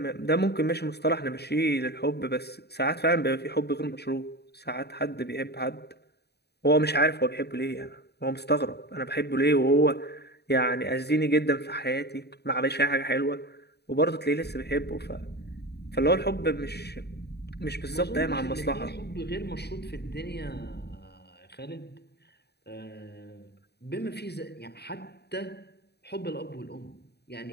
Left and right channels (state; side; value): late; right; 0.48 ms